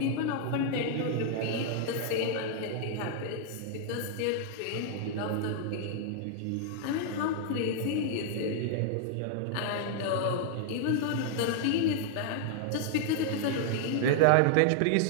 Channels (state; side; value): different; both; correlation 0.00